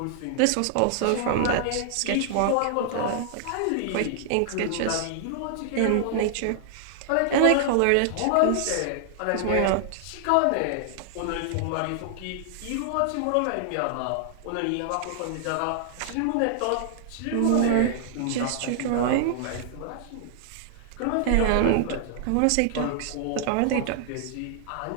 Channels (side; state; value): both; different; correlation -0.01